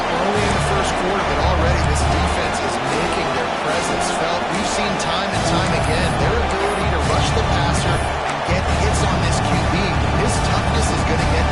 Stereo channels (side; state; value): both; identical; correlation 1.00